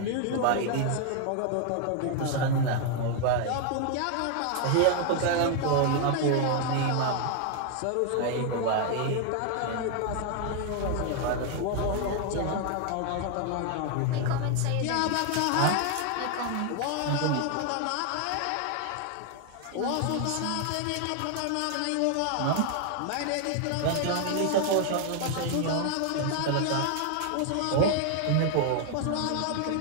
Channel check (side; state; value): both; different; correlation 0.00